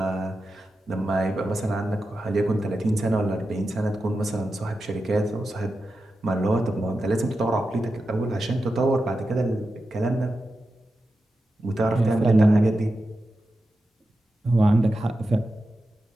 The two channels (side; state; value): both; normal; correlation 0.90